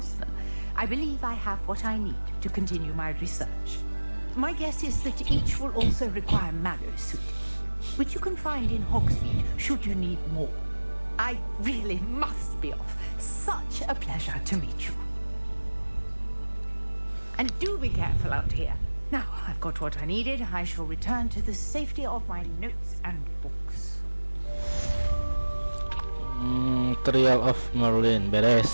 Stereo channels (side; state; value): both; inverted; correlation -1.00